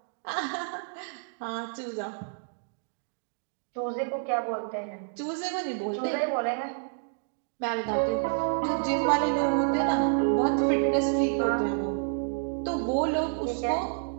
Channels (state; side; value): silent; left; digital silence